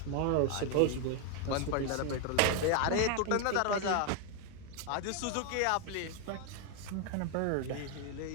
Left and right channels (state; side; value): different; both; correlation 0.01